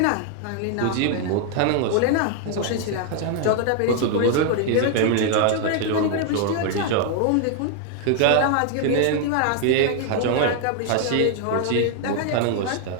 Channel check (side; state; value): both; different; correlation 0.00